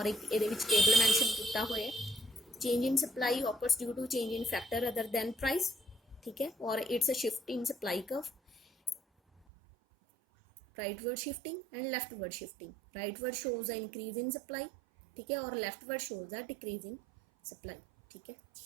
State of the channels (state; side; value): drops out; left; at 9.5 s